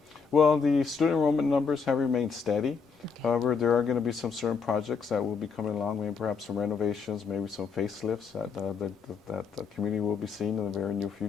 Well, the student enrollment numbers have remained steady. However, there are going to be some certain projects that will be coming along, maybe perhaps some renovations, maybe some facelifts that the community will be seeing in the very near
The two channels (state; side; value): quieter; right; 5.6 dB